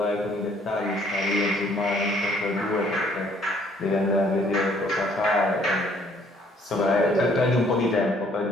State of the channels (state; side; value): normal; both; correlation 0.62